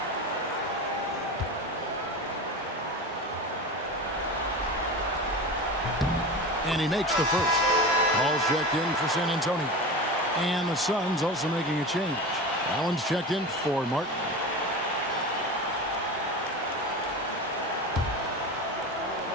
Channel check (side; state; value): both; normal; correlation 0.28